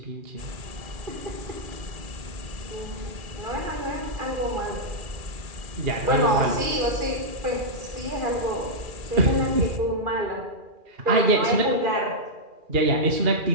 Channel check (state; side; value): late; left; 2.4 ms